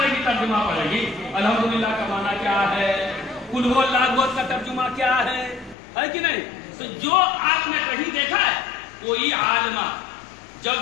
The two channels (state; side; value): drops out; right; at 5.8 s